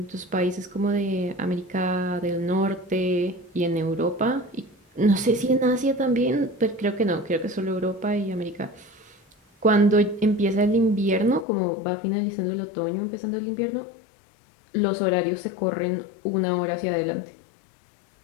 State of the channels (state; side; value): drops out; right; at 11.5 s